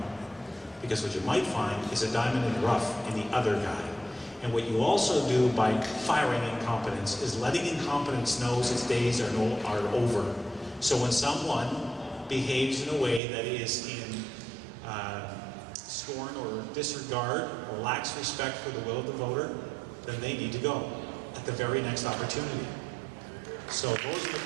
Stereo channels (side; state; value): left; drops out; at 13.2 s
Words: Because what you might find is a diamond in the rough in the other guy. And what you also do by firing incompetence is letting incompetence know its days are over. So when someone behaves in a way that is in scorn or disregard or lacks respect for the will of the voter, then they need to go at the very next opportunity. So those are the